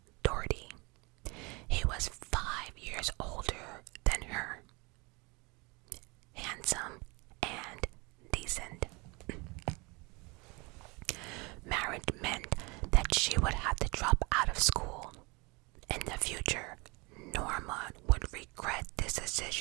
Doherty. He was 5 years older than her. Handsome and decent. Marriage meant that she would have to drop out of school. In the future, Norma would regret this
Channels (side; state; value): left; quieter; 27.5 dB